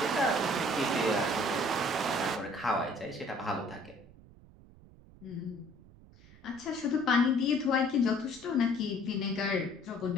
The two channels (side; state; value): right; noise; rumble, 23 dB below the sound